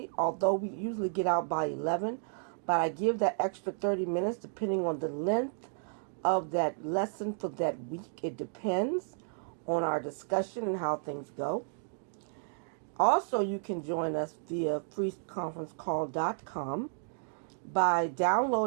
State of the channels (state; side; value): silent; left; digital silence